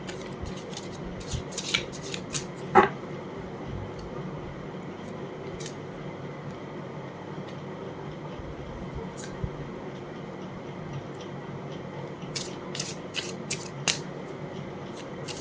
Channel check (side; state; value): both; identical; correlation 1.00